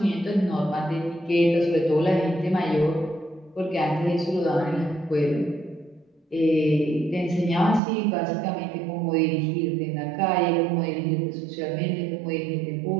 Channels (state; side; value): drops out; left; at 7.8 s